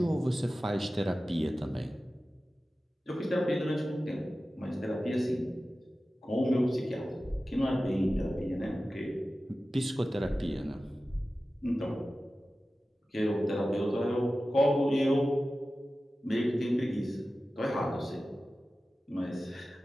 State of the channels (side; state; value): both; normal; correlation 0.95